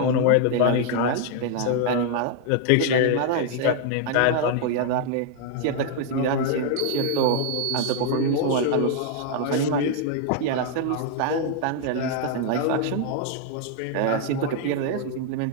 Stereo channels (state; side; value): different; both; correlation 0.00